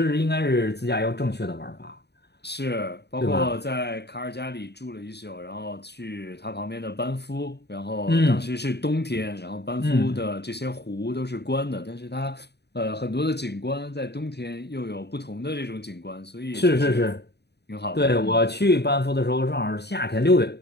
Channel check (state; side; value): late; right; 0.48 ms